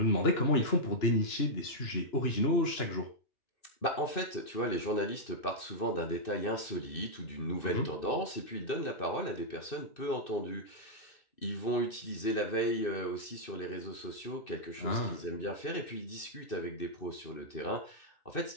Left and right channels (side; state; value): right; late; 2.6 ms